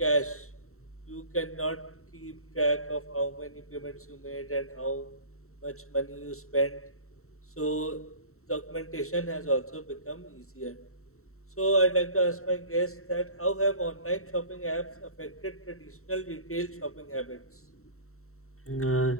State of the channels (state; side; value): late; right; 0.63 ms